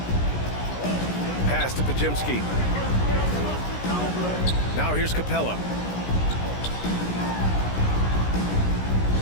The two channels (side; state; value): right; late; 16 ms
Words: Pass to Pajimski. Now here's Capella.